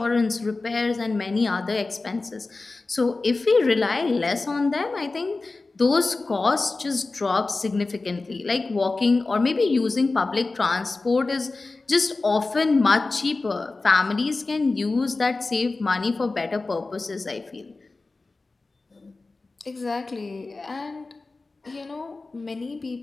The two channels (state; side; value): quieter; right; 3.5 dB